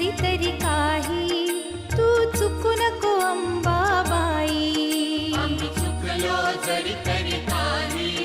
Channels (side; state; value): both; identical; correlation 1.00